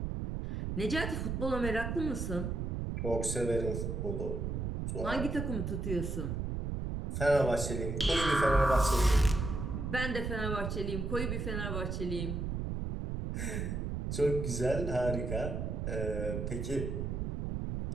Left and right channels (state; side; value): noise; right; rumble, 2 dB below the sound